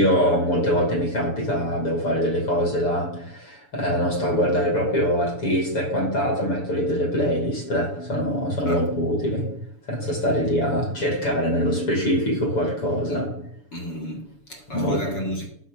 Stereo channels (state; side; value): late; right; 7.0 ms